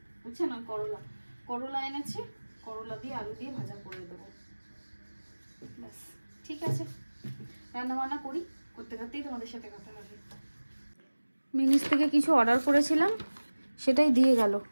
উচ্ছে না করলা, করলা এনেছে, করলা দিয়ে আলু দিয়ে ভাজা করে দেবো। ব্যাস ঠিক আছে, রান্না বান্না করি, করতে করতেই তোমাদের সাথে কথা হবে। মিনিস থেকে কিছু অর্ডার করেছিলাম, সেটাই দিয়ে গেল।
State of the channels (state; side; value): inverted; both; correlation -1.00